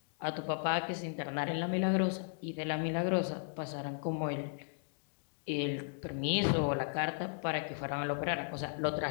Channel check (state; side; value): silent; right; digital silence